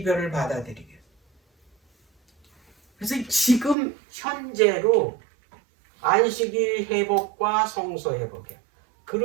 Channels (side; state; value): left; drops out; at 3.8 s